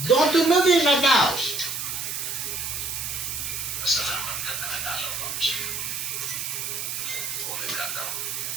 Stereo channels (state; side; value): noise; right; hiss, 4 dB below the sound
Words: Don't do nothing right now.